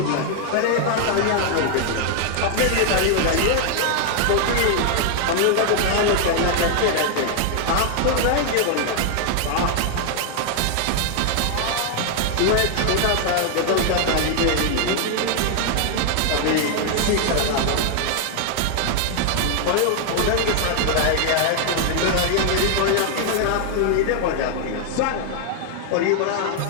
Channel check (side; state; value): both; different; correlation 0.00